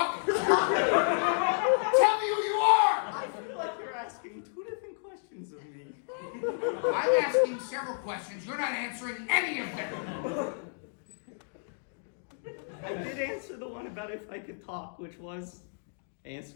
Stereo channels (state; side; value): silent; right; digital silence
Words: Tell me who you are! I feel like you're asking two different questions of me. I'm asking several questions. You're not answering any of them. I did answer the one about if I could talk, which was